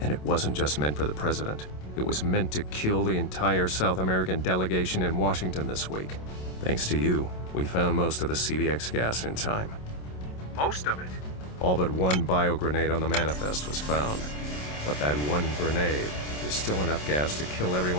And it wasn't just meant for the President. It was meant to kill the entire South American delegation in Washington this week. Thanks to you, we found most of the CVX gas in time. Most of it? All but one bio-grenade on the manifest was found. But that one grenade is still enough gas to kill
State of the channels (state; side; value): late; right; 27 ms